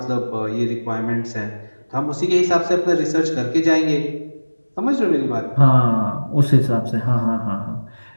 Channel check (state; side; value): inverted; both; correlation -1.00